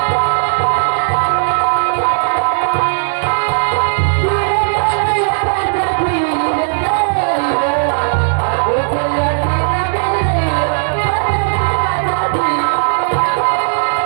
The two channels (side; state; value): left; silent; digital silence